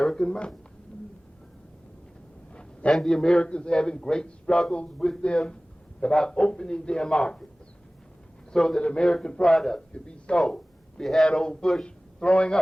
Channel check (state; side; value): normal; both; correlation 0.98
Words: money. And the Americans having great struggles with them about opening their markets so that American products could be sold. We had old Bush throwing